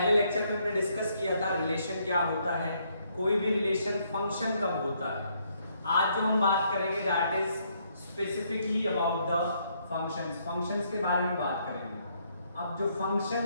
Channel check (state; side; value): inverted; both; correlation -0.71